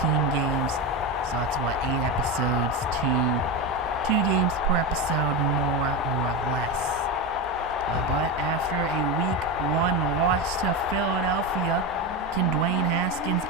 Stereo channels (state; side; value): normal; both; correlation 0.17